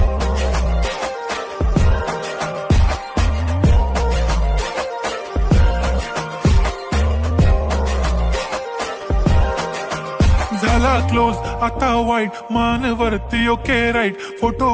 झाला क्लोज आता वाईट, मानवरती ओके राईट.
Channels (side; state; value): both; identical; correlation 1.00